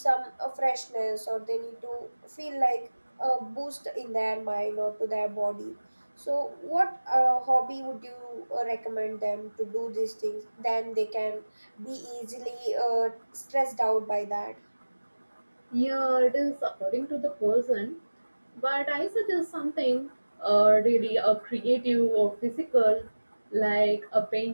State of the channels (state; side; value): inverted; both; correlation -1.00